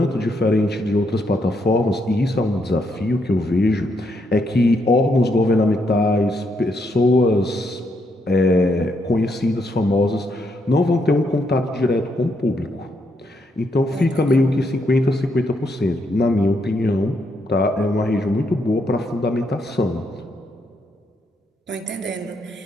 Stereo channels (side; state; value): both; normal; correlation 0.77